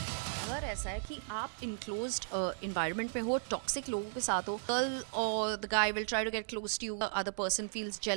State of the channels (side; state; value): left; silent; digital silence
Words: अगर ऐसा है कि आप इनक्लोज्ड इन्वायरमेंट में हो, टॉक्सिक लोगों के साथ हो, गर्ल और the guy will try to get close to you, other person feels